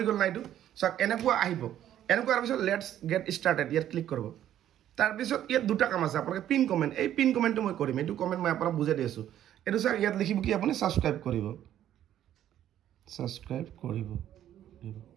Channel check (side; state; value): left; quieter; 11.5 dB